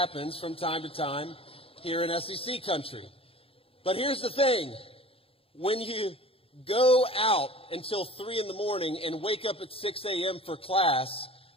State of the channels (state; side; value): late; right; 0.27 ms